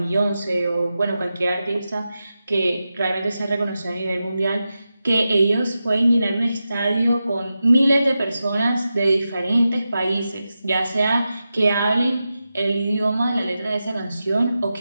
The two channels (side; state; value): both; inverted; correlation -0.91